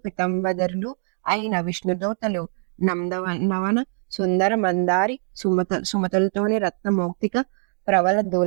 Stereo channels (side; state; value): left; silent; digital silence